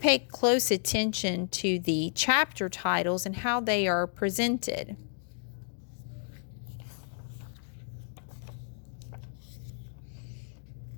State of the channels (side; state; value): right; silent; digital silence